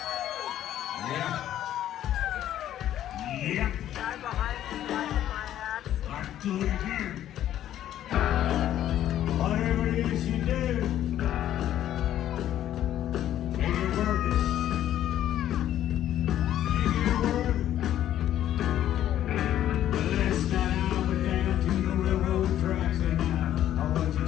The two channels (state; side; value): quieter; right; 11.8 dB